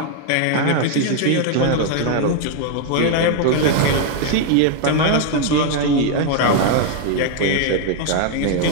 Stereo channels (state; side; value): different; both; correlation 0.00